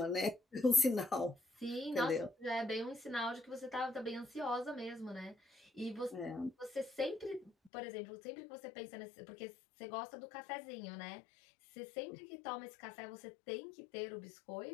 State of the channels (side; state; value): right; drops out; at 7.7 s